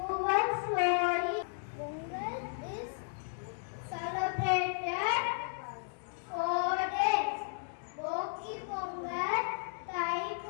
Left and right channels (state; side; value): silent; right; digital silence